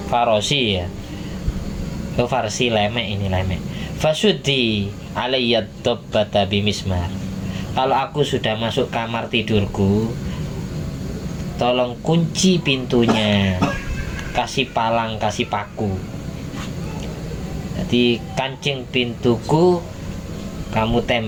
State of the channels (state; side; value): identical; both; correlation 1.00